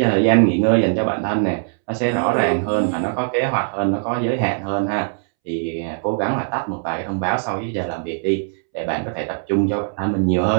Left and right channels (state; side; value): silent; left; 65 dB below the other